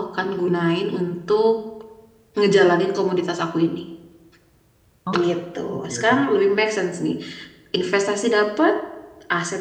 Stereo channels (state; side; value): identical; both; correlation 1.00